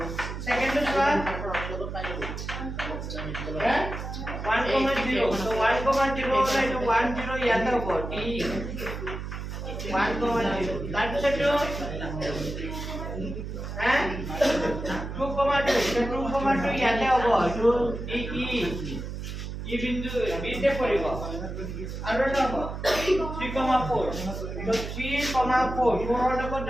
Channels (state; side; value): noise; right; hum, 7 dB below the sound